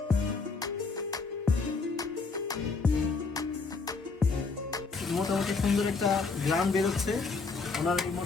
মোটামুটি সুন্দর একটা গ্রাম বেরোচ্ছে ওনার এই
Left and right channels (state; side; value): quieter; right; 4.3 dB